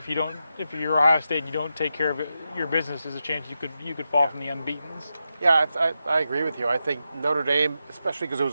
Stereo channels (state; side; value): inverted; both; correlation -0.88